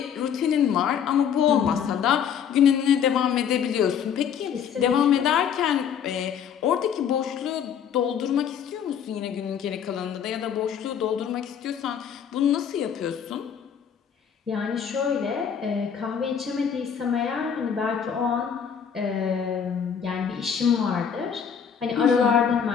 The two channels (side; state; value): right; quieter; 7.9 dB